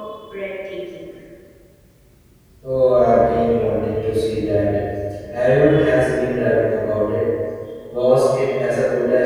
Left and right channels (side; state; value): both; identical; correlation 1.00